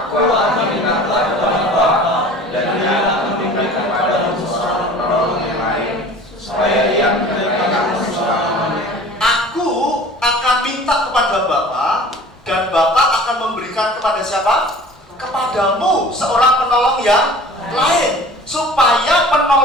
akan minta kepada Bapa, dan Dia akan memberikan kepadamu seorang penolong yang lain, supaya Ia memberikan kamu selama-lamanya. Aku akan minta kepada Bapa, dan Bapa akan memberikan kepada siapa? Kepadamu seorang penolong yang lain, supaya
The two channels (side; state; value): both; normal; correlation 0.44